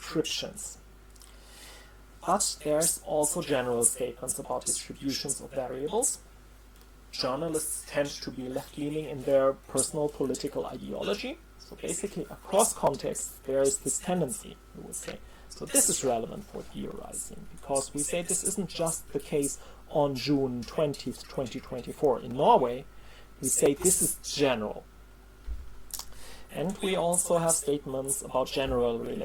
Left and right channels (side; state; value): both; identical; correlation 1.00